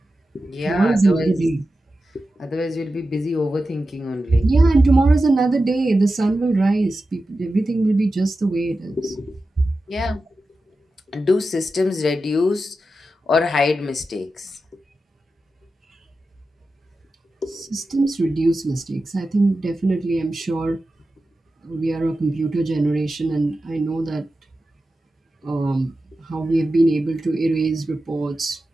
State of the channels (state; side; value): normal; both; correlation 0.92